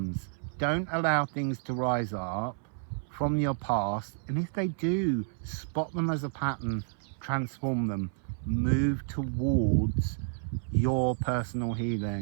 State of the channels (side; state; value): left; silent; 58 dB below the other